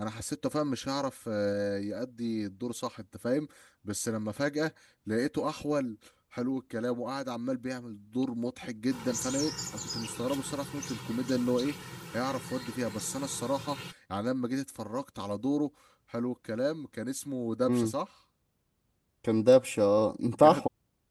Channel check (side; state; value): both; identical; correlation 1.00